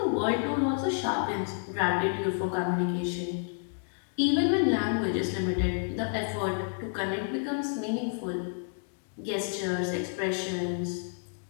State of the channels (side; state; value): right; silent; digital silence